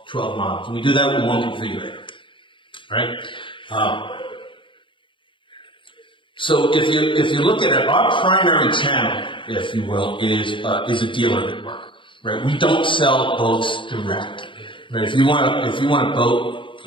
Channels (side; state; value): right; late; 0.24 ms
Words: models. And we do that with one configurator, right? So if you look at it, our primary channel, if you will, is a dealer network, right? We don't sell boats direct, right? If you want a boat,